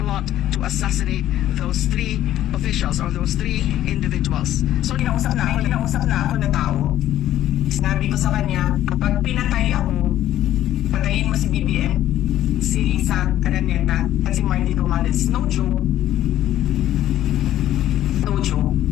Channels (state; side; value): quieter; right; 12.8 dB